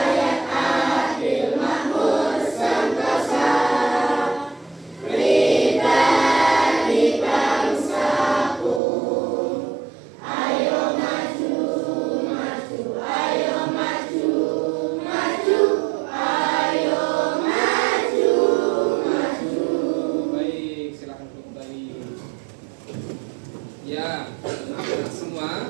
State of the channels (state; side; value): drops out; left; at 8.8 s